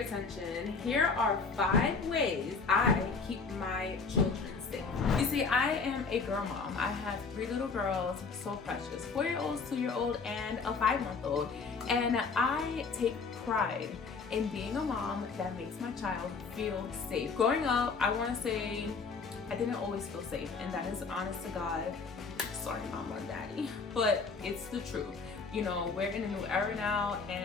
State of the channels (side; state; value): right; quieter; 4.7 dB